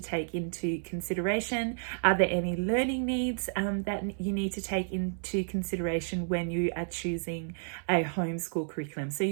into consideration? Are there any learning needs that you need to take into consideration when you are choosing a homeschool curriculum? So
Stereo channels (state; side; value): silent; left; 57 dB below the other